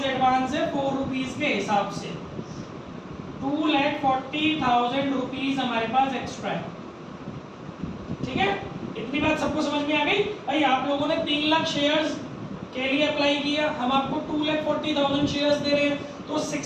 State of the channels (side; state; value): both; identical; correlation 1.00